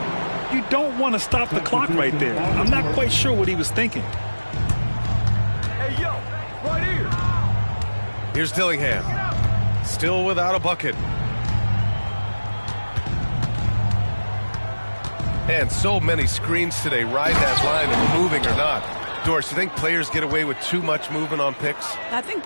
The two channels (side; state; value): both; inverted; correlation -1.00